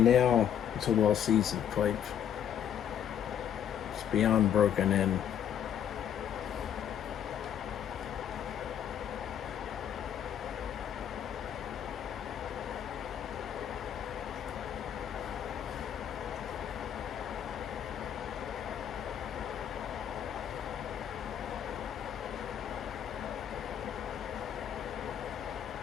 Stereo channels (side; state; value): right; quieter; 9.3 dB